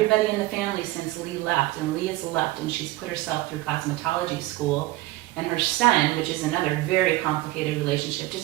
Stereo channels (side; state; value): left; quieter; 18.1 dB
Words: in the family since Lee left. And Lee has left and she's put herself through cosmetology school. And her son, which is another very complicated relationship,